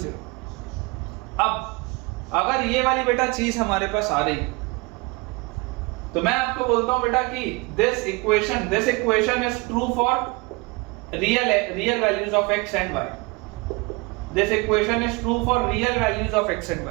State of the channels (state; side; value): quieter; left; 26.0 dB